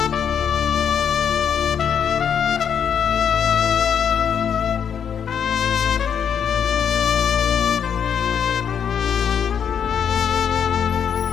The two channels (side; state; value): right; quieter; 7.9 dB